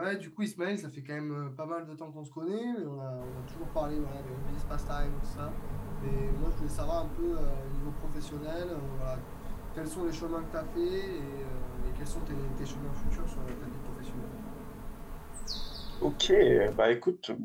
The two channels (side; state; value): both; identical; correlation 1.00